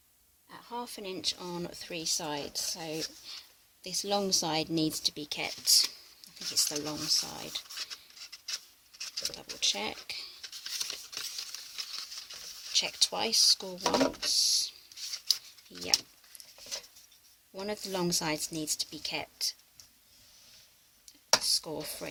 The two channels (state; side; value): identical; both; correlation 1.00